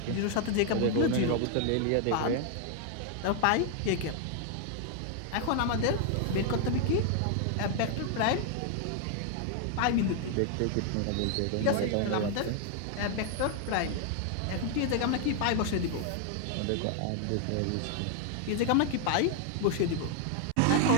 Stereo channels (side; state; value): both; different; correlation 0.00